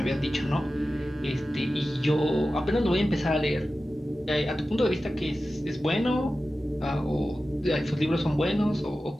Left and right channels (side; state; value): both; normal; correlation 0.94